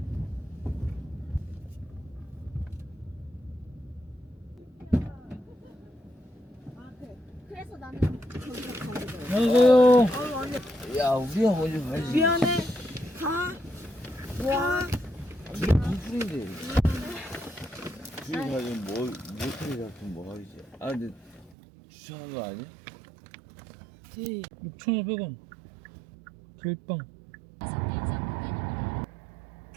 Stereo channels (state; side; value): drops out; left; at 21.6 s